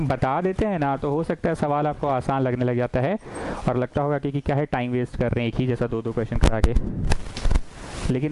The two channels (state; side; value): identical; both; correlation 1.00